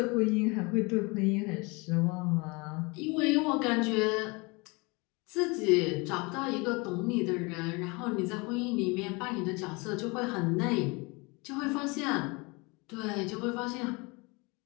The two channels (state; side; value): quieter; right; 27.3 dB